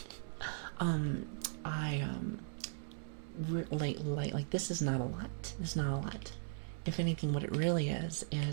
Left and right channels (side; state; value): left; silent; digital silence